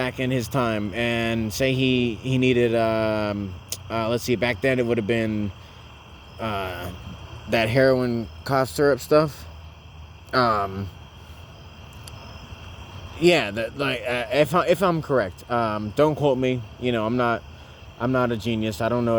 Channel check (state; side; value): identical; both; correlation 1.00